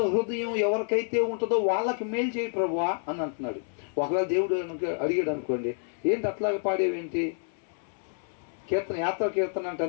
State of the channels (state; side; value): silent; right; 59 dB below the other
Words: హృదయం ఎవరికైతే ఉంటుందో వాళ్ళకి మేలు చేయి ప్రభువా అని అంటున్నాడు. ఒకవేళ దేవుడు అడిగాడు అనుకోండి, ఏంటి అట్లాగే పాడేవేంటి? యాత్ర కీర్తన అంటే